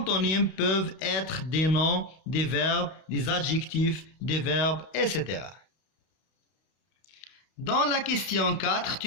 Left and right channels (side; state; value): right; late; 32 ms